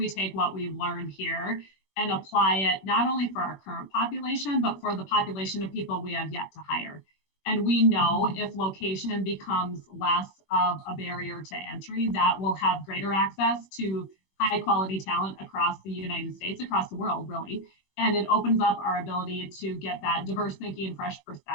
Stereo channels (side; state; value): right; late; 21 ms